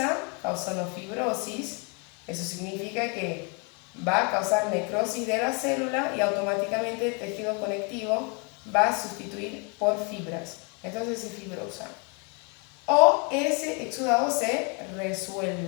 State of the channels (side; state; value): right; quieter; 33.8 dB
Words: causando fibrosis. Eso significa que va a causar necrosis de la célula y automáticamente el tejido conectivo va a sustituir por fibras. Entonces se fibrosa. O ese exudado se